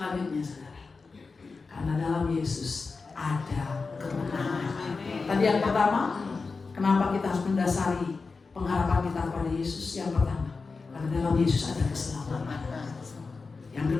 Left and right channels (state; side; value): quieter; right; 4.3 dB